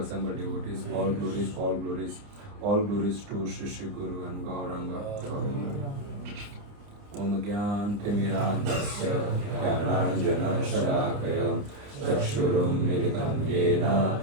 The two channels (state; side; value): late; left; 29 ms